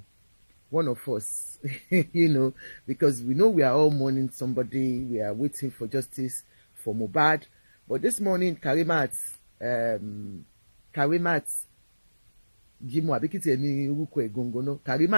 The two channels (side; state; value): both; inverted; correlation -1.00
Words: one of us, you know, because we know we are all mourning somebody, we are waiting for justice for Mohbad. But this morning, Karimat Jimo Abikiti Emi Uruko Egongono,